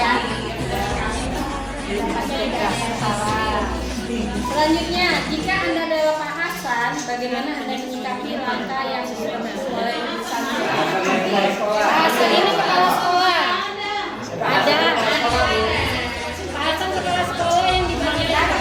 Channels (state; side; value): identical; both; correlation 1.00